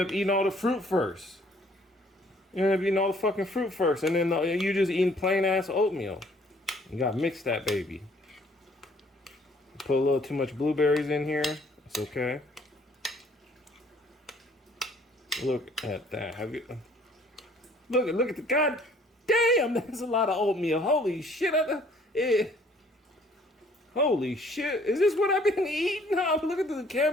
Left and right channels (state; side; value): normal; both; correlation 0.60